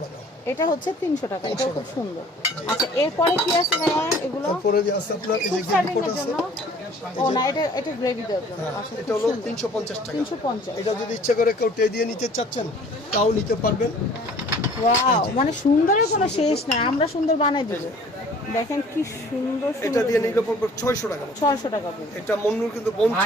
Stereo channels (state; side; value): normal; both; correlation 0.52